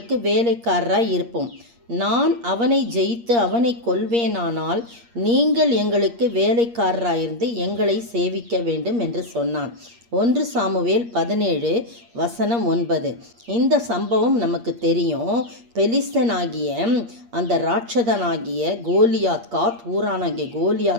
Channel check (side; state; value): left; late; 8.5 ms